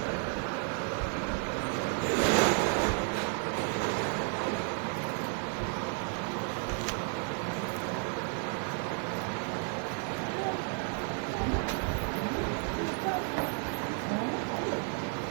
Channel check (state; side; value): quieter; left; 38.6 dB